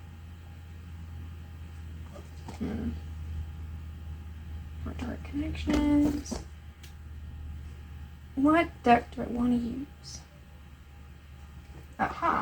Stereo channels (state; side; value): identical; both; correlation 1.00